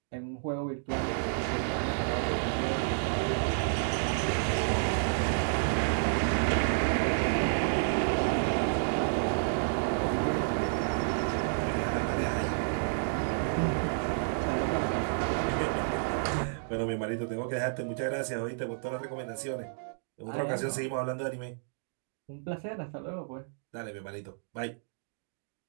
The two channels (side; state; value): left; silent; digital silence